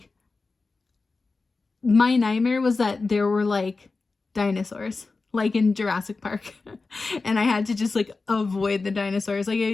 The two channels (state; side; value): quieter; right; 3.9 dB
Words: my nightmare was that there were like dinosaurs like in Jurassic Park and I had to just like avoid the dinosaurs. Like